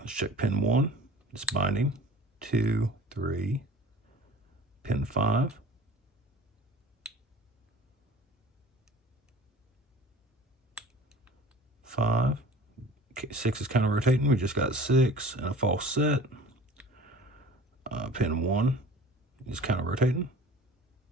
let's check pin 1. It's binding. 2, 3. Pin 5. 5. Okay, 6 is kind of rotating. We just got 6 and a false set. Pin 1 is kind of rotating.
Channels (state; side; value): normal; both; correlation 0.43